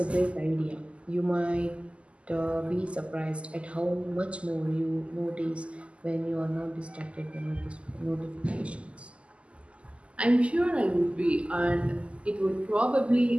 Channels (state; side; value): late; left; 0.057 ms